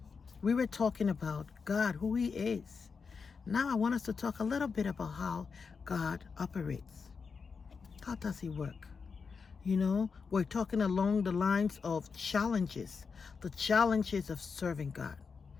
We were talking about God, who He is. Now I want us to talk a little bit about how God operates. How does He work? We're talking along the lines of challenges, the challenges of serving God.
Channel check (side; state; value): right; quieter; 5.4 dB